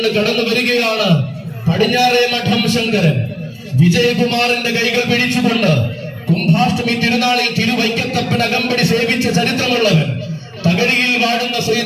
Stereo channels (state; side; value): identical; both; correlation 1.00